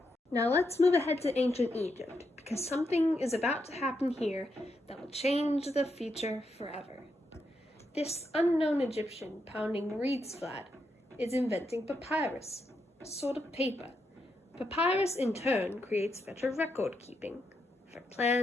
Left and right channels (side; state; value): both; normal; correlation 0.82